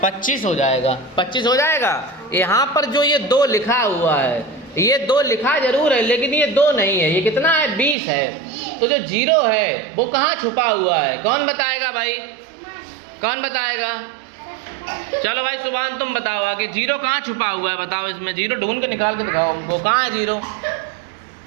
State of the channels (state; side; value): drops out; left; at 8.0 s